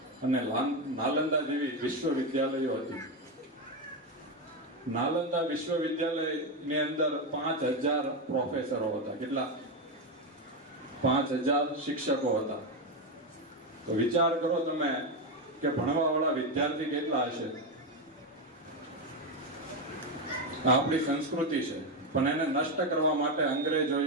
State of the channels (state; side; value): normal; both; correlation 0.10